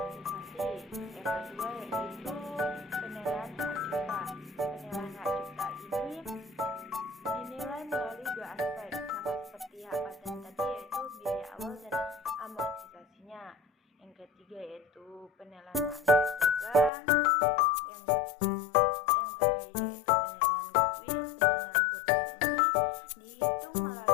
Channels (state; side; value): drops out; right; at 16.9 s